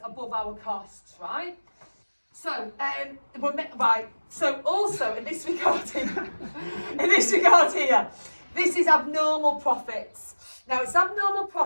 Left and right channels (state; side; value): inverted; both; correlation -1.00